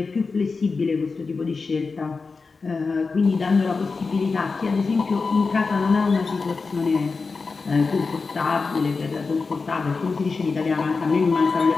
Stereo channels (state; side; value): quieter; right; 4.4 dB